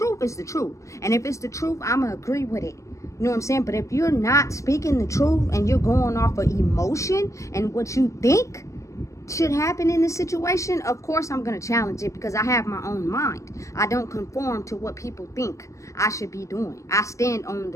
is the truth. And if it's the truth, I'm going to agree with it. You know what I'm saying? But if you're not speaking the truth and you're going off of emotion and what you think should happen in this situation, of course I'm going to challenge it because I have my own mind. I don't conform to what people think I should be doing. I stand on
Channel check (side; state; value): right; late; 0.15 ms